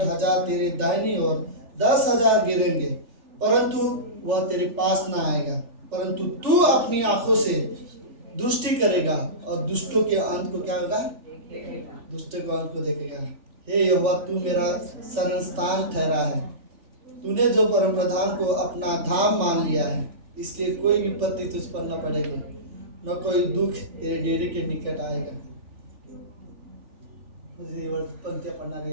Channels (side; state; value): left; late; 3.4 ms